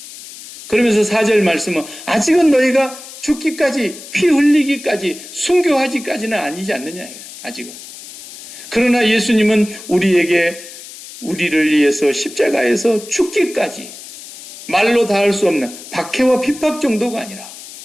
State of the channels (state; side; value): noise; left; hiss, 15 dB below the sound